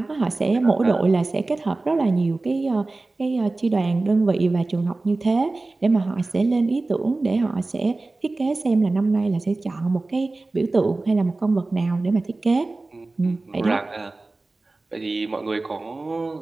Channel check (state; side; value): quieter; left; 3.2 dB